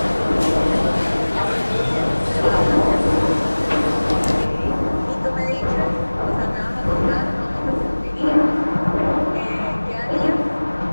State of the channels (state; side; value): inverted; both; correlation -1.00